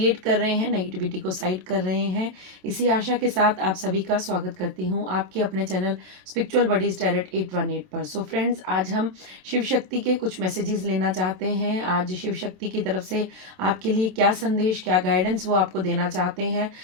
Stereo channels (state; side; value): late; left; 27 ms